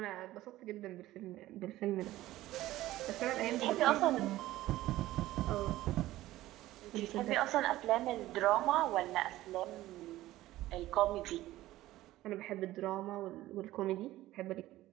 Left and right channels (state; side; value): quieter; left; 15.9 dB